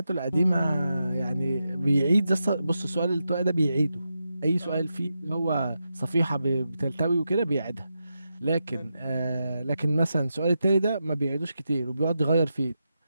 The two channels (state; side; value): inverted; both; correlation -0.87